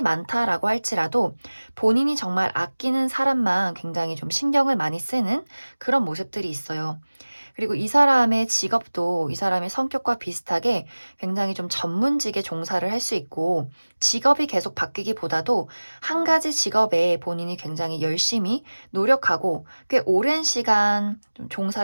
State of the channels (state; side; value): inverted; both; correlation -1.00